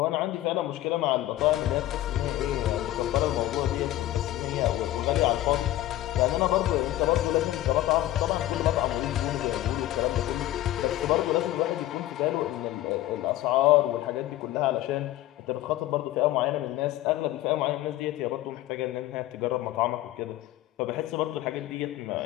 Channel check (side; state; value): right; quieter; 14.8 dB